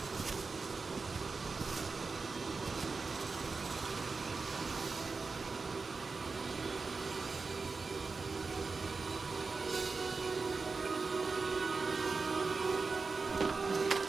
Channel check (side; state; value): left; quieter; 4.3 dB